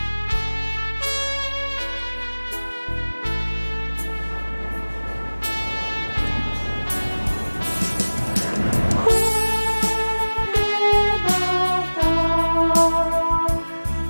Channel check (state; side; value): inverted; both; correlation -1.00